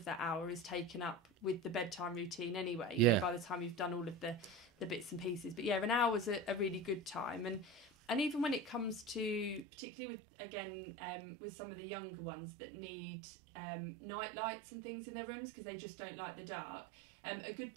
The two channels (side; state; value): left; drops out; at 9.7 s